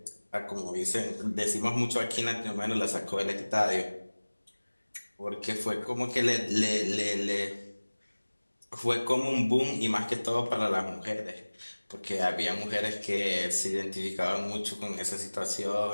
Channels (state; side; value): inverted; both; correlation -1.00